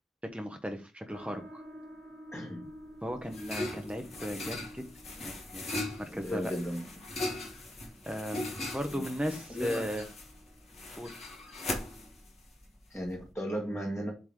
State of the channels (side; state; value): both; normal; correlation 0.84